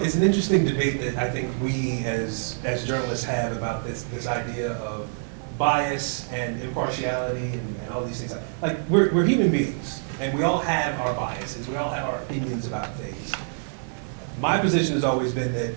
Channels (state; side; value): silent; left; 61 dB below the other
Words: an interesting debate that I think we as journalists have about this idea of bias and impartiality and all these things. Like we're human beings and we all have our biases. We all have our opinions about things. My position has always been that